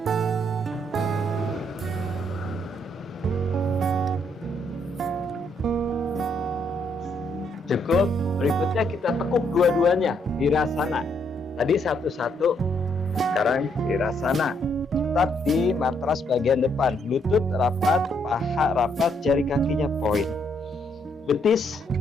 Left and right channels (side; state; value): both; normal; correlation 0.73